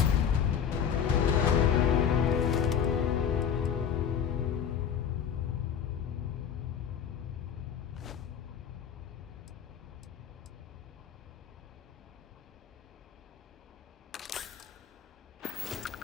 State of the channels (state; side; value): quieter; right; 8.0 dB